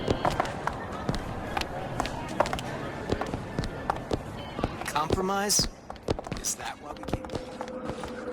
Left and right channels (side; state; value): both; identical; correlation 1.00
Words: Compromise? Is that what we came?